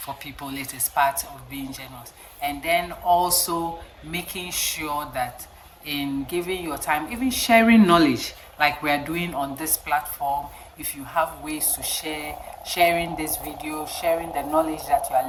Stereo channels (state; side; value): identical; both; correlation 1.00